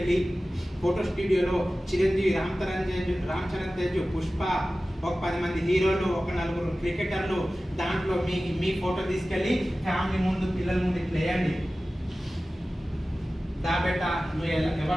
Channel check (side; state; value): both; normal; correlation 0.96